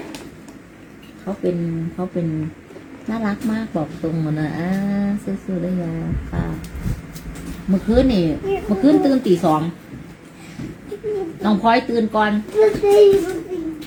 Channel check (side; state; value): both; identical; correlation 1.00